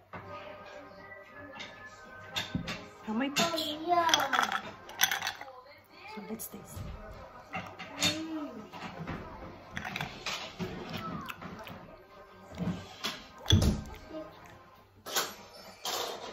May peach. So let's taste.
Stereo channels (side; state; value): both; identical; correlation 1.00